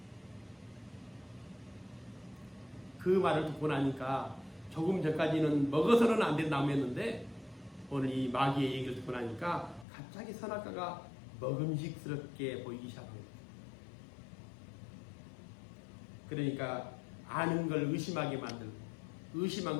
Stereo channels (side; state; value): right; drops out; at 9.9 s